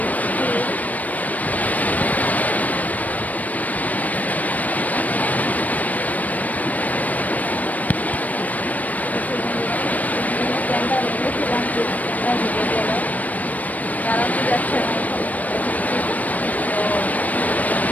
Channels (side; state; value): right; late; 0.075 ms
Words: ক্যামেরা নিয়েছিলাম, ক্যামেরা ঢুকে গেল, চালাতে যাচ্ছে না। তো